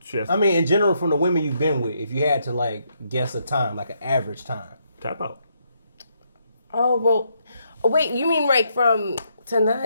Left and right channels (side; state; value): both; inverted; correlation -0.76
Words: she has to I mean, in general, from the women you've been with, if you had to like guess a time, like an average time. tap out. Oh, well, wait, you mean like from